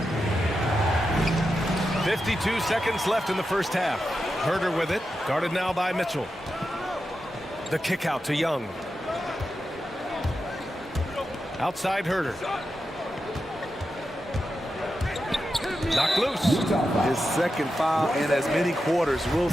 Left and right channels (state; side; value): normal; both; correlation 0.89